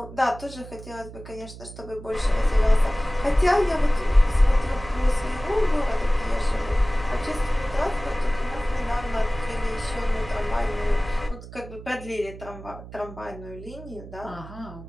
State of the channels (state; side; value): noise; right; hum, 15 dB below the sound